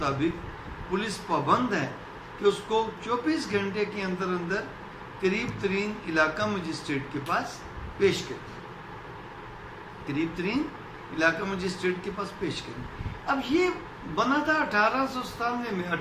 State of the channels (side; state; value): both; identical; correlation 1.00